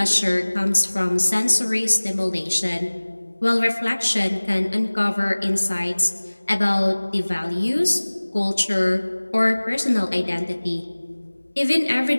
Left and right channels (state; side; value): inverted; both; correlation -1.00